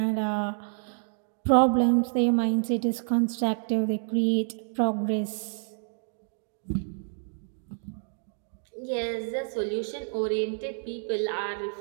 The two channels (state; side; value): silent; left; 59 dB below the other